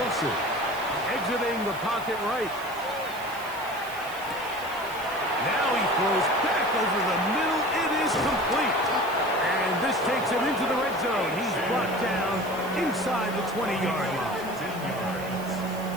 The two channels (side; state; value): right; noise; hiss, 17 dB below the sound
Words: Exiting the pocket right. throws back over the middle. It is complete. And this takes him into the red zone. He's brought down inside the 20-yard line.